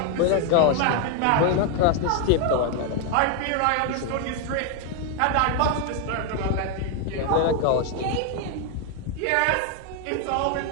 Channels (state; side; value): different; both; correlation 0.01